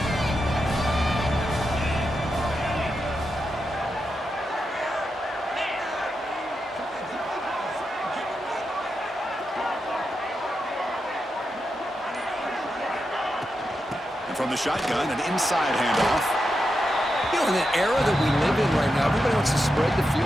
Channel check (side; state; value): both; normal; correlation 0.87